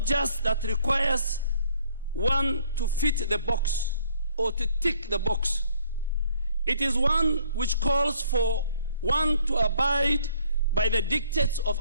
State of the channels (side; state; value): both; inverted; correlation -0.62